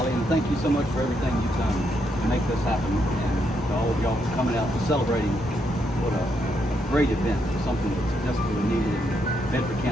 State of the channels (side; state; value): both; normal; correlation 0.78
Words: and thank you so much for everything you've done to make this happen, and to all all of y'all for coming out and celebrating what a great event, something that's desperately needed in Bedford